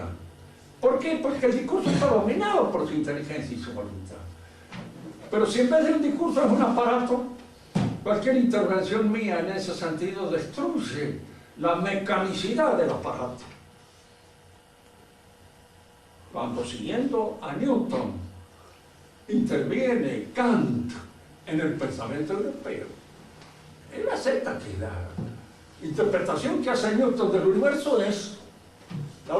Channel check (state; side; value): identical; both; correlation 1.00